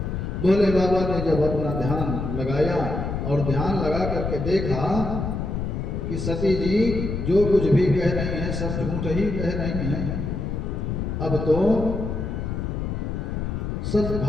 भोले बाबा ने जब अपना ध्यान लगाया और ध्यान लगा करके देखा कि सती जी जो कुछ भी कह रही हैं सब झूठ ही कह रही हैं, अब तो सब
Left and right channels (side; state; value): left; noise; rumble, 3 dB below the sound